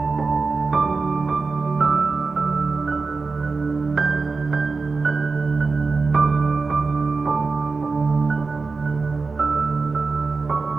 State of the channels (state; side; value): quieter; left; 4.2 dB